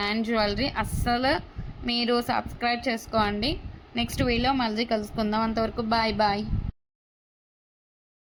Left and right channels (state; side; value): identical; both; correlation 1.00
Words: jewellery. అస్సలు మీరు సబ్స్క్రైబ్ చేసుకోండి. నెక్స్ట్ వీడియో మళ్ళీ కలుసుకుందాం. అంతవరకు బాయ్ బాయ్.